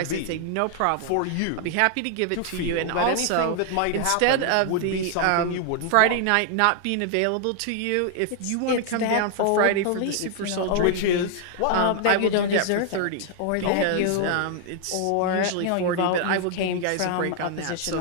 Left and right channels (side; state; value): both; different; correlation 0.00